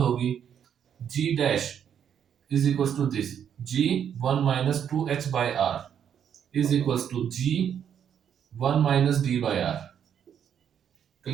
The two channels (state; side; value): quieter; left; 8.6 dB